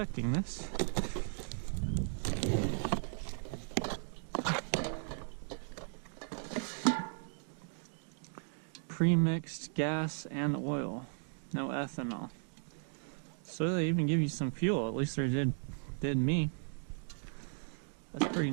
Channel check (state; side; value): silent; left; 54 dB below the other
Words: this. Pre-mixed gas and oil. No ethanol. So they even give you some fuel. At least they did me. That's pretty